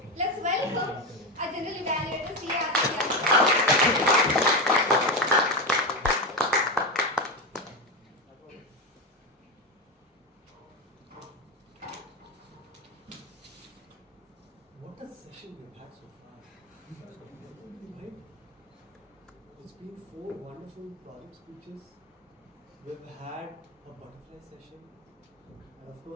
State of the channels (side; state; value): both; normal; correlation 0.17